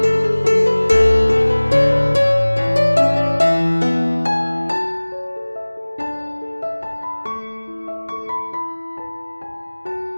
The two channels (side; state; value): both; inverted; correlation -1.00